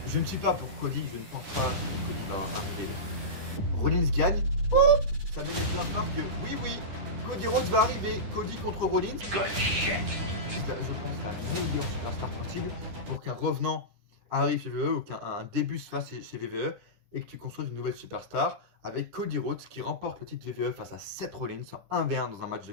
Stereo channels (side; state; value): left; late; 10 ms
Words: Je ne suis pas pour Cody, je ne pense pas que Cody va arriver. Rollins gagne. Oh, ça met les pleins phares que oui, Cody Rhodes va arriver. Cody contre Rollins. Good shit. Je pense la meilleure superstar possible pour qu'un revenant arrive chez VVE ou qu'un début se fasse chez VVE et que tu construises une nouvelle superstar avec Cody Rhodes qui remporte le titre VVE face à Seth Rollins en 1v1 dans un match de